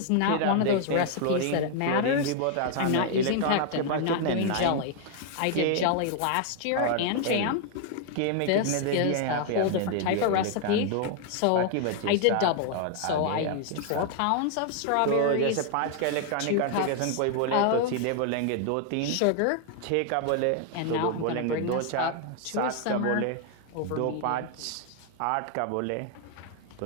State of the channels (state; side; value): different; both; correlation 0.00